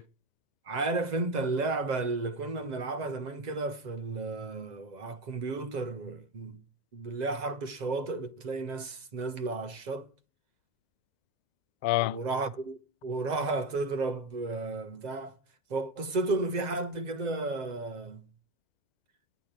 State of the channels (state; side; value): late; left; 2.0 ms